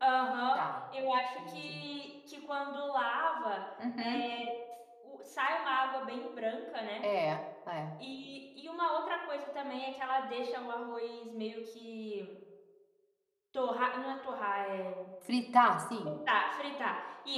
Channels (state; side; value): identical; both; correlation 1.00